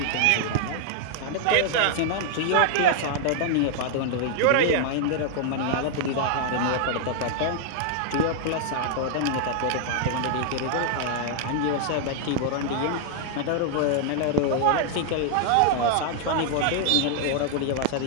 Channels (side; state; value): both; different; correlation 0.00